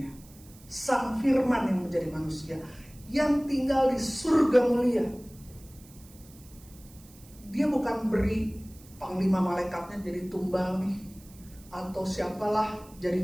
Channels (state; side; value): noise; right; hiss, 24 dB below the sound